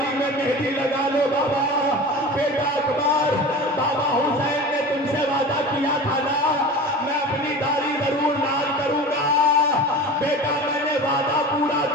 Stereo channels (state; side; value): normal; both; correlation 0.34